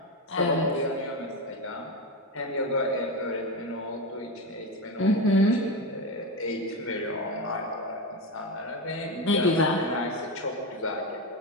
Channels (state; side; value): normal; both; correlation 0.15